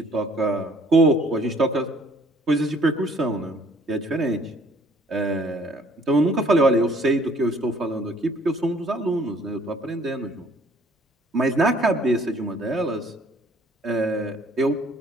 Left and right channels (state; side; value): normal; both; correlation 0.58